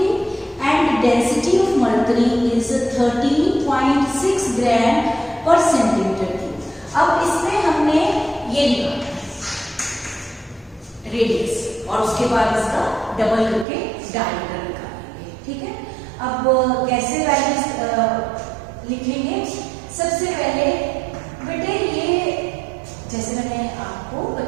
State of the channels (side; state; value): left; drops out; at 13.7 s